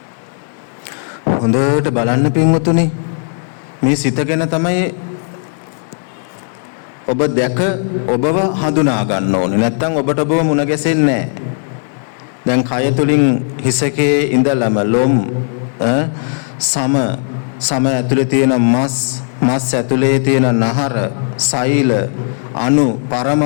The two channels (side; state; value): right; silent; digital silence